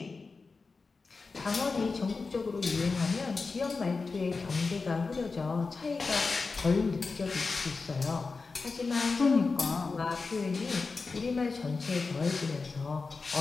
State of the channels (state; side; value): quieter; right; 4.3 dB